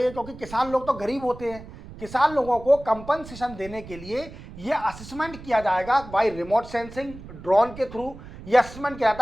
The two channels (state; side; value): noise; right; rumble, 16 dB below the sound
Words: क्योंकि किसान लोग तो गरीब होते हैं, किसान लोगों को कंपनसेशन देने के लिए ये असेसमेंट किया जाएगा बाय रिमोट सेंसिंग ड्रोन के थ्रू। ये असेसमेंट किया